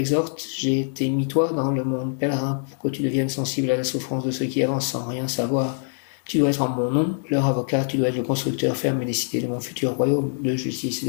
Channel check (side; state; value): right; silent; digital silence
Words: j'ai été mis toi dans le monde pèlerin pour que tu deviennes sensible à la souffrance de ceux qui avancent sans rien savoir. Tu dois être en mon nom, leur avocat, tu dois être le constructeur ferme et décidé de mon futur royaume de justice et